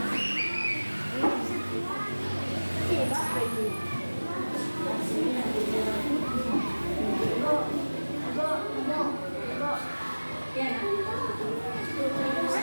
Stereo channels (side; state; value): both; inverted; correlation -1.00